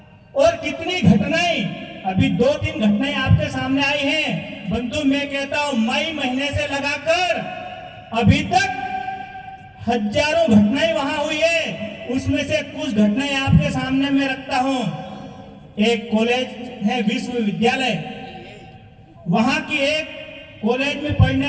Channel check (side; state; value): both; identical; correlation 1.00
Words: और कितनी घटनाएं, अभी 2-3 घटनाएं आपके सामने आई हैं। बंधु, मैं कहता हूं मई महीने से लगाकर अभी तक हजारों घटनाएं वहां हुई है। उसमें से कुछ घटनाएं आपके सामने मैं रखता हूं। एक कॉलेज है, विश्वविद्यालय, वहां की एक कॉलेज में पढ़ने